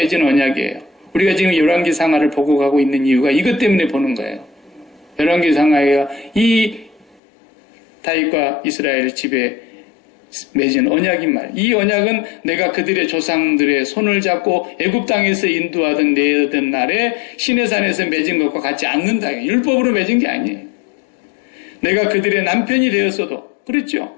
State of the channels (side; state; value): right; drops out; at 7.2 s